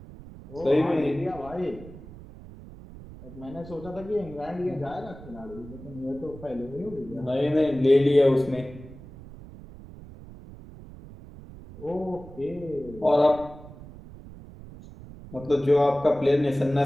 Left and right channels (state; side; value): noise; right; rumble, 17 dB below the sound